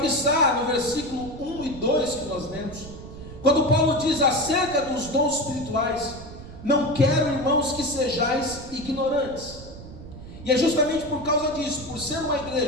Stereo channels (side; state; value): right; noise; rumble, 14 dB below the sound